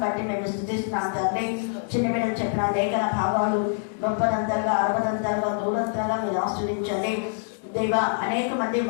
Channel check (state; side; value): silent; right; digital silence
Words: బట్టి మేము స్థుతిస్తున్నాం తండ్రి. చిన్న బిడ్డలు చెప్పిన లేఖన భావాలు 30 60 దూరంతలుగా మీరు ఆస్వాదించండి దేవా. అనేక మంది